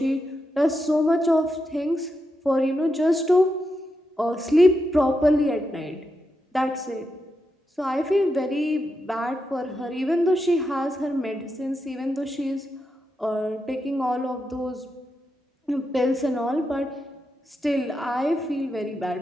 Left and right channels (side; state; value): both; normal; correlation 0.85